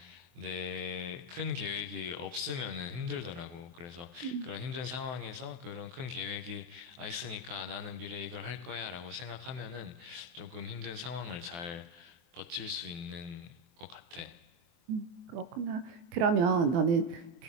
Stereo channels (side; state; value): left; late; 23 ms